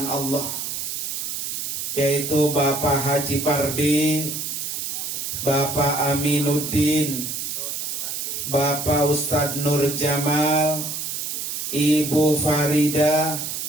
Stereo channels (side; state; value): right; noise; hiss, 4 dB below the sound